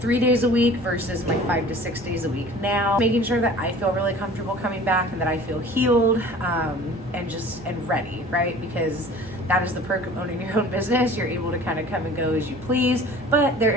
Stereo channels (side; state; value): both; normal; correlation 0.45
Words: days a week versus my 5 to 6 days a week now, making sure that I feel really comfortable coming back and that I feel healed and ready, right? Because that is the perk of owning your own business. You're able to kind of come and go as you please, but there